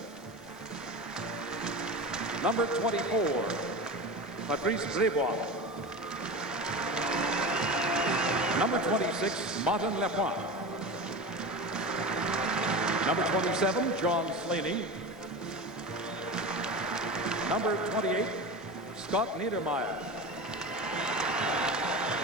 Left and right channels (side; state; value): both; normal; correlation 0.27